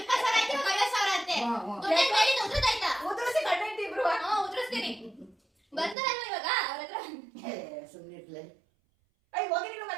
ಆಯ್ತು, 50,000 ಅಂತೆ. ಉದ್ರದಾಯ್ತಾ? ಉದ್ರಸಿ ಗಂಡ ಹೆಂಡತಿ ಇಬ್ರು. ಉದ್ರಿಸ್ತೀನಿ. ಬರ್ತಾರಲ್ವ ಇವಾಗ ಅವ್ರ ಹತ್ರ? ಸುಮ್ಮನೆ ಇರ್ಲಿ. ಅಯ್ಯ ಹೋಗಿ, ನೀನು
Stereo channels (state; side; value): drops out; left; at 6.0 s